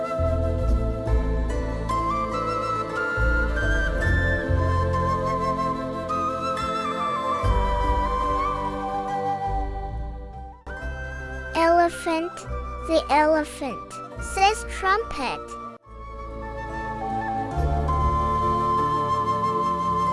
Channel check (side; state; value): both; identical; correlation 1.00